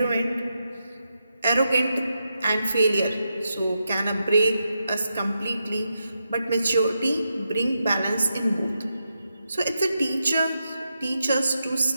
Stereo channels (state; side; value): inverted; both; correlation -0.86